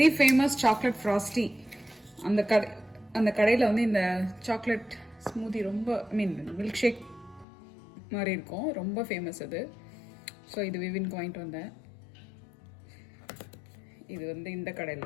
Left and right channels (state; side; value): drops out; right; at 7.5 s